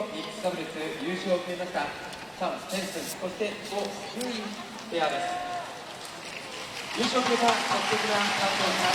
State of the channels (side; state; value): both; identical; correlation 1.00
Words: ックスダブルス優勝を決めましたチャン・ペンスン、そしてゴ・ユインペアです。優勝を決めた素敵な感動をま